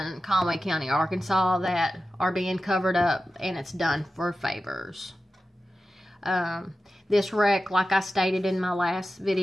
Conway County, Arkansas that are being covered up, and it's done for favors. This wreck, like I stated in my last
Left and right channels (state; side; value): normal; both; correlation 0.93